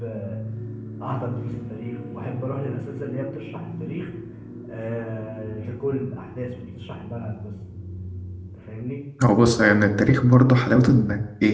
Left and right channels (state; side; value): identical; both; correlation 1.00